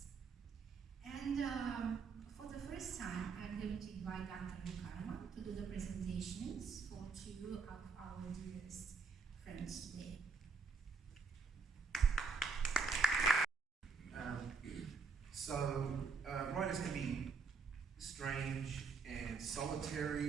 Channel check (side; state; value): left; quieter; 4.9 dB